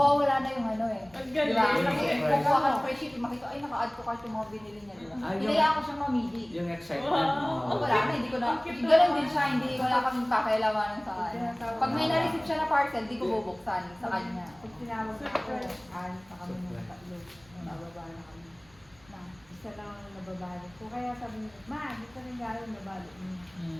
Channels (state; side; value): noise; right; rumble, 28 dB below the sound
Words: na yung ano eh. Ang Diba? galing. Kasi Right. kukuha ka ng free shipping, makita, ay naka-add ko kahit yung mga binili niya. Diba? Ah, yung- Hinayaan ko siyang mamili. yung excitement Wow. Oh, mo. wala na, hindi ko na. Ang cute Ganun naman. din siya, hindi wala kaming pakialamanan sa kanya. Pag may na-receive siya na parcel, di ko bubuksan sa kanya. Pag tinawag ako, alis na kami ng tatlo. Bababa na kami. Na. Isa lang ang nababalik ko. Kaya sabi niya, Ma, gusto rin gano'n nabalik niya.